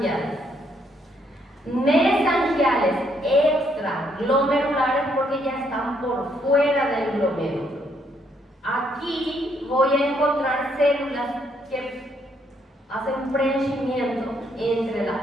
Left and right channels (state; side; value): normal; both; correlation 0.72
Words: Mesangiales extraglomerulares porque ya están por fuera del glomérulo. Aquí voy a encontrar células que hacen preenchimiento entre la